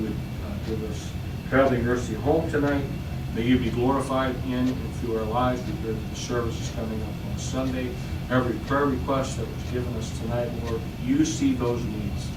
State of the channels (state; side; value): identical; both; correlation 1.00